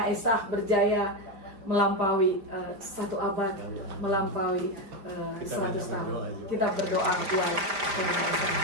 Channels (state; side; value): late; left; 5.0 ms